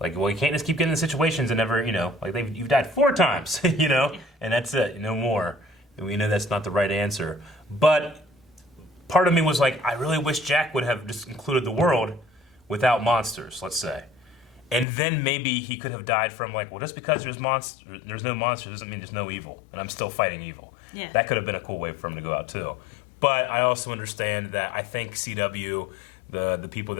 well, you can't just keep getting in situations and never, like you've died 4 times, and that's it, no more. And we know that's not the right answer. But part of me was like, I really wish Jack would have just included the world without monsters, let's say. And then maybe he could have died from like, well, just because there's no monsters doesn't mean there's no evil, and I'm still fighting evil. Yeah. That could have been a cool way for him to go out too. But I also understand that I think CW, the people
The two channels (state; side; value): drops out; right; at 14.9 s